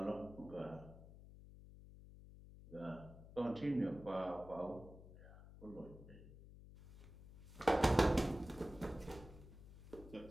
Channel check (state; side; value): noise; left; hum, 16 dB below the sound